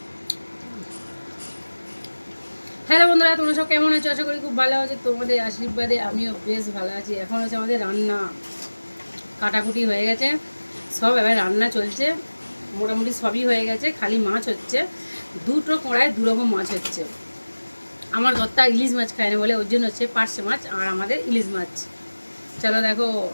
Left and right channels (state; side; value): inverted; both; correlation -1.00